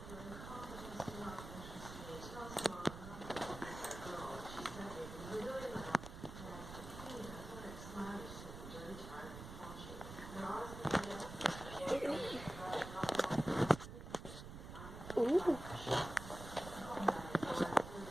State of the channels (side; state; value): right; noise; rumble, 11 dB below the sound